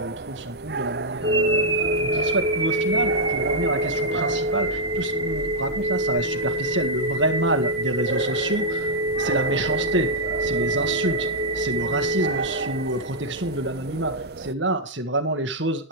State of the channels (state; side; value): normal; both; correlation -0.05